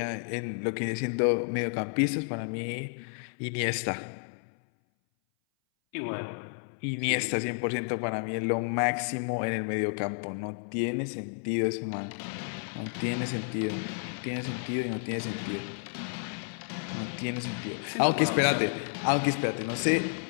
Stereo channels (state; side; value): silent; right; 57 dB below the other